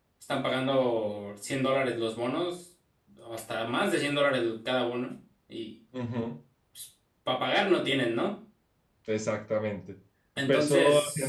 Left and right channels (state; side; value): identical; both; correlation 1.00